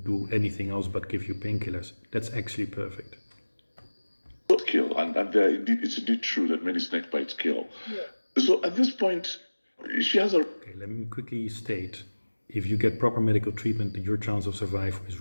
do anything else but give you painkillers. That's actually perfect. Kill, and it's indeed true that many snake bites kill. Yeah. So at this point, she has a... Okay, let me quickly state, if you get proper medical treatment, your chance of survival is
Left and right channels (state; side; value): inverted; both; correlation -1.00